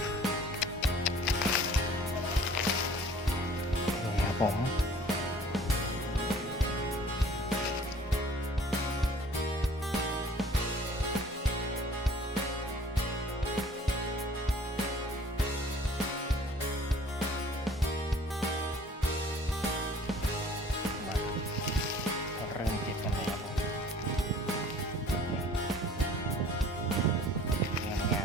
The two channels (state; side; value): normal; both; correlation 0.51